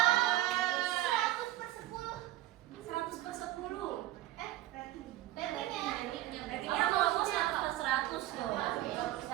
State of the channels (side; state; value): left; quieter; 15.4 dB